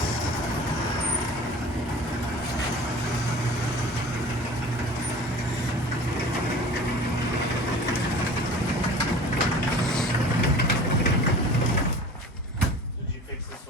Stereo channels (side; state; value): both; normal; correlation 0.42